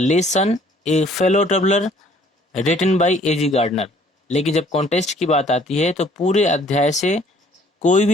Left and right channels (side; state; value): both; normal; correlation 0.59